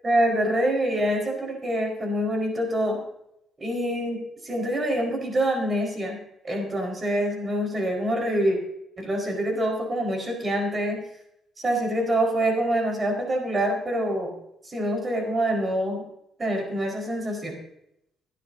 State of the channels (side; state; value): both; normal; correlation 0.75